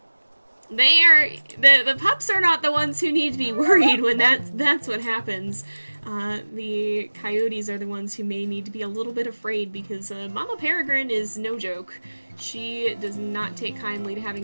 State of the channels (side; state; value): both; inverted; correlation -1.00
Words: pups are not the ones who need to be worried when that's what happens. The coyotes are the ones who may need to be a little bit afraid, because Mama Peregrine is no joke. She does not take kindly to